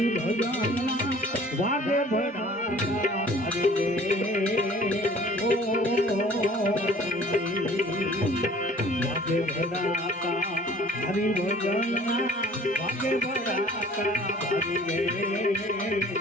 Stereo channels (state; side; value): normal; both; correlation 0.50